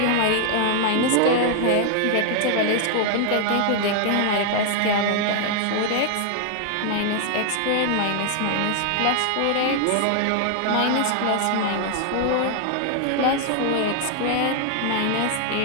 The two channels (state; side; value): different; both; correlation 0.00